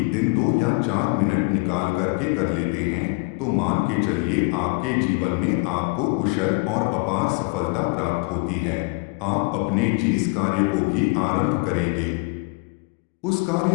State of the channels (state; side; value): quieter; right; 28.6 dB